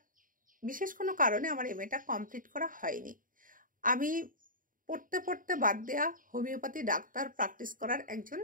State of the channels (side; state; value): left; late; 0.39 ms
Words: বিশেষ কোনো কারণে আমার এমএটা কমপ্লিট করা হয়নি। আমি পড়তে পড়তে বাদ দেয়া হোমিওপ্যাথি ডাক্তার প্র্যাকটিস করার একজন